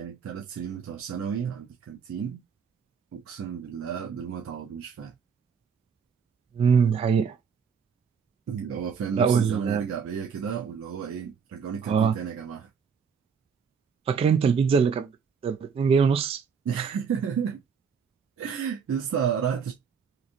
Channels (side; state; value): left; quieter; 6.3 dB